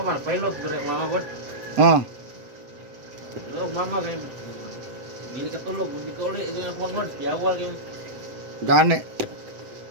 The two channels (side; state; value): left; late; 7.7 ms